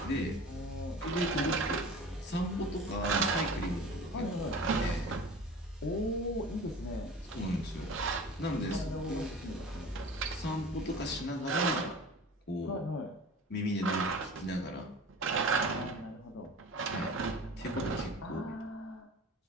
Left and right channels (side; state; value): both; normal; correlation 0.39